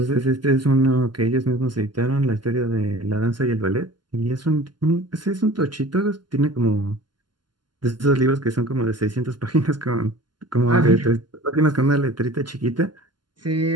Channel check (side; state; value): left; late; 0.71 ms